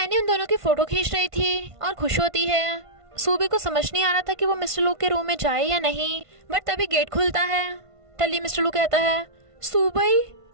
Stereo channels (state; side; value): late; left; 1.5 ms